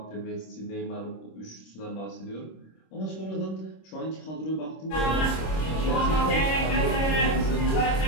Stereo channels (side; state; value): right; late; 26 ms